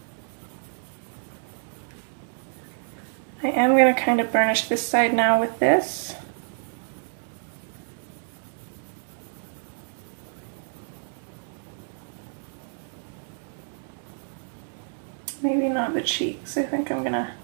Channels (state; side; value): silent; left; digital silence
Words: I am going to kind of burnish this side now with this. Maybe not the cheeks. I think I'm going to